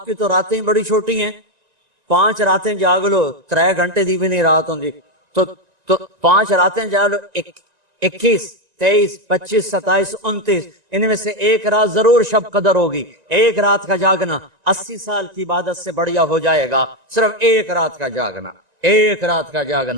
کی تو راتیں بڑی چھوٹی ہیں، 5 راتیں جاگ لو، 3 گھنٹے دی بھی نہیں رات ہوں تو 5 راتیں جاگ لو، 21 23 25 27 29، ان میں سے ایک رات ضرور شب قدر ہوگی۔ ایک رات کا جاگنا 80 سال کی عبادت سے بڑھیا ہو جائے گا، صرف ایک رات کا جاگنا، ایک رات کا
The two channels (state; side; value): late; left; 1.9 ms